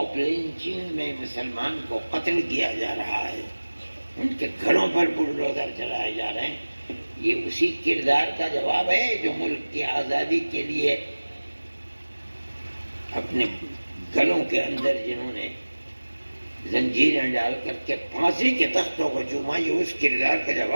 لنچنگ میں مسلمان کو قتل کیا جا رہا ہے، ان کے گھروں پر بلڈوزر چلائے جا رہے ہیں۔ یہ اسی کردار کا جواب ہے جو ملک کی آزادی کے لیے اپنے گلوں کے اندر جنہوں نے زنجیریں ڈال کر کے پھانسی کے تختوں کو چوما، یہ اس کردار کا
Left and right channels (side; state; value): both; inverted; correlation -1.00